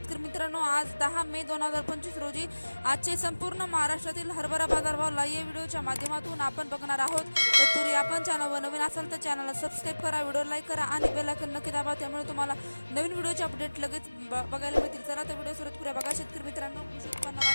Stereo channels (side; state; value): both; inverted; correlation -1.00